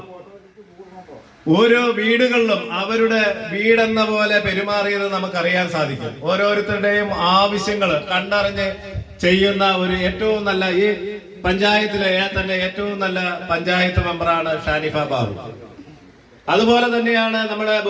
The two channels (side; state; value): both; identical; correlation 1.00